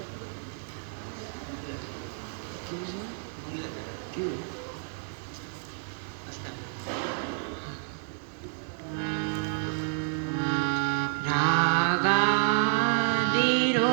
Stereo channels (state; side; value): silent; left; digital silence